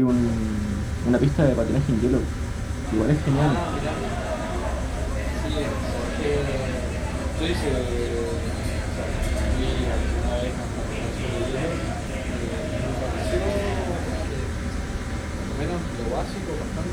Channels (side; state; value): both; identical; correlation 1.00